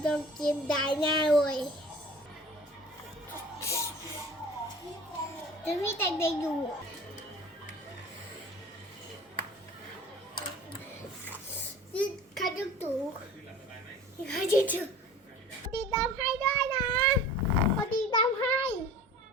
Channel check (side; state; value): both; normal; correlation 0.43